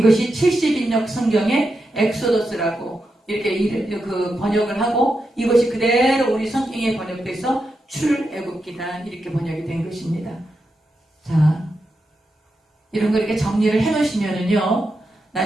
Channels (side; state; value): both; normal; correlation 0.87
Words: 70인역 성경의 엑소더스라고 이렇게 그 번역을 하고, 이것이 그대로 우리 성경에 번역돼서 출애굽기다 이렇게 번역이 된 것입니다. 자, 이런 거 이렇게 정리를 해놓으시면은요,